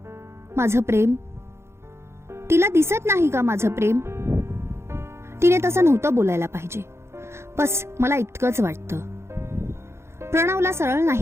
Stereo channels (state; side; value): late; left; 0.13 ms